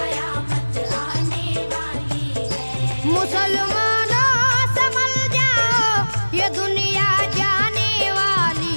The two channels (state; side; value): inverted; both; correlation -1.00